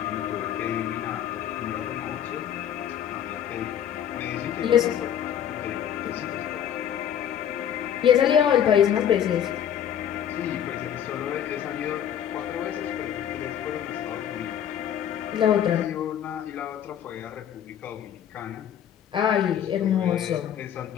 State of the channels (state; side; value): quieter; right; 9.7 dB